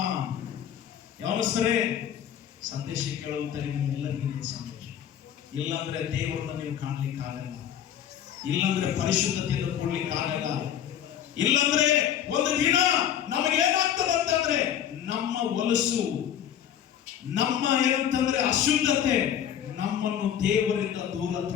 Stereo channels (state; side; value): quieter; right; 9.8 dB